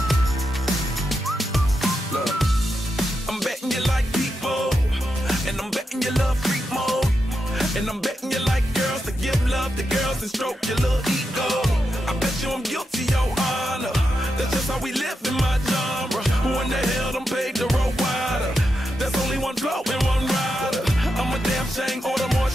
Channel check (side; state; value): both; normal; correlation 0.86